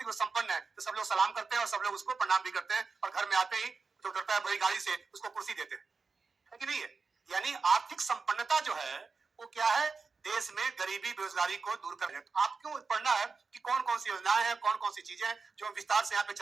रूप संपन्न है, तो सब लोग सलाम करते हैं और सब लोग उसको प्रणाम भी करते हैं और घर में आते ही तो डरता है बड़ी गाड़ी से उसको कुर्सी देते हैं, है कि नहीं है। यानी आर्थिक संपन्नता जो है वो क्या है, देश में गरीबी बेरोजगारी को दूर करना है। तो आपको पढ़ना है कि कौन कौन सी योजनाएं हैं, कौन कौन सी चीजें हैं, जो विस्तार से यहाँ पे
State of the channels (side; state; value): left; quieter; 4.6 dB